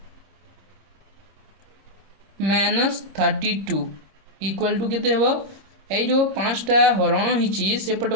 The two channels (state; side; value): late; left; 26 ms